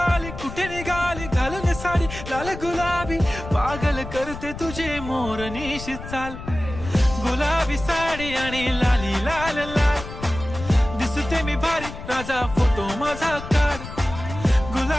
कुठे निघाली घालून साडी लाल गुलाबी, पागल करते तुझे मोरनीशी चाल. गुलाबी साडी आणि लाली लाल लाल, दिसते मी भारी राजा फोटो माझा काढ.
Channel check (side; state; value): left; noise; rumble, 11 dB below the sound